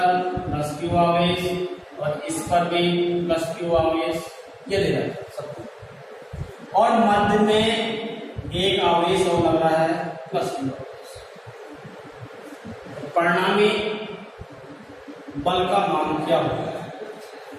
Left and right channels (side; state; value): both; identical; correlation 1.00